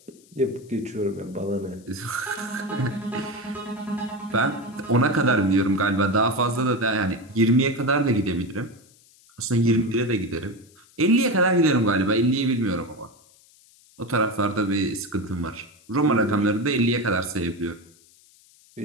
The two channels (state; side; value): noise; left; hiss, 28 dB below the sound